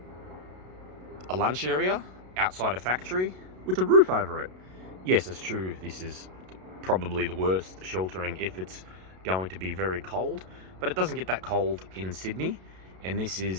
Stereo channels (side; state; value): left; late; 32 ms